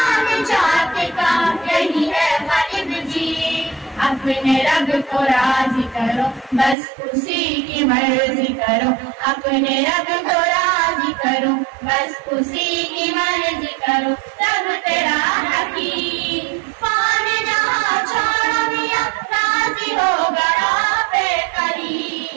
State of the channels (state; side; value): drops out; left; at 6.8 s